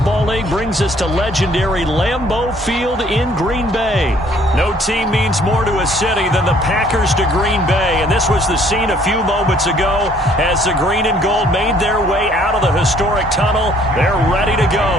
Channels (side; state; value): both; normal; correlation 0.60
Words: League brings us to legendary Lambeau Field in Green Bay. No team means more to a city than the Packers to Green Bay, and this was the scene a few moments ago as the green and gold made their way out of the historic tunnel. They're ready to